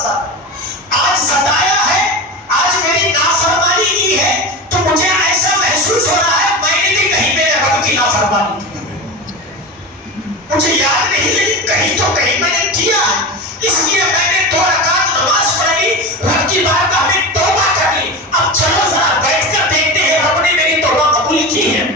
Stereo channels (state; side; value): normal; both; correlation 0.26